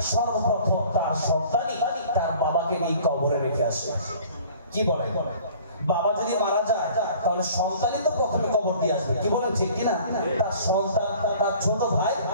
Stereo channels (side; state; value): both; inverted; correlation -0.49